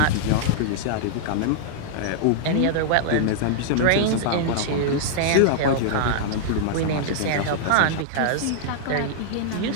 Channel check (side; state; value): both; different; correlation -0.01